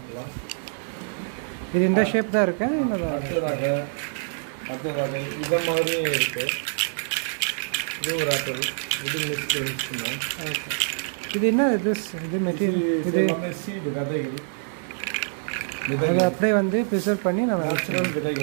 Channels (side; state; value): left; silent; digital silence